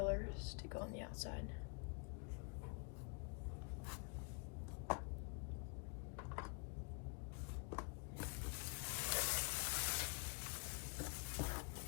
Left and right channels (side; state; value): right; quieter; 37.7 dB